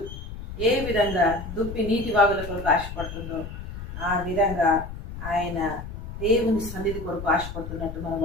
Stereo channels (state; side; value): noise; left; rumble, 10 dB below the sound